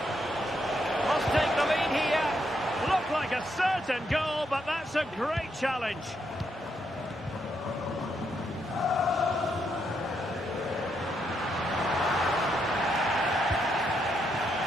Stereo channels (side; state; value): both; normal; correlation 0.78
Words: Must take the lead here. Looked like a certain goal, but that's a great challenge.